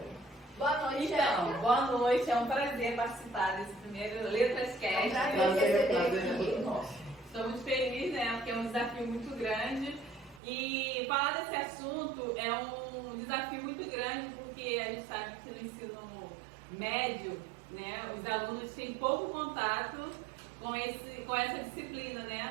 Boa noite, Érica. Boa noite, é um prazer participar desse primeiro Letras Cast. É um prazer receber aqui. Estou muito feliz, né, porque é um desafio muito grande. E falar desse assunto é um desafio muito grande, porque a gente sabe que no ensino médio, né, os alunos têm pouco contato com essa disciplina,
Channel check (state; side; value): drops out; left; at 10.4 s